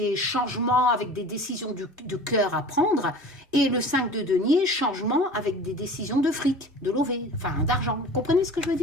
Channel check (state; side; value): normal; both; correlation 0.40